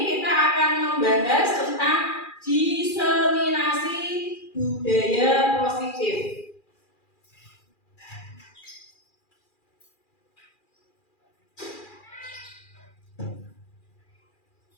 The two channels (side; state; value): right; late; 2.4 ms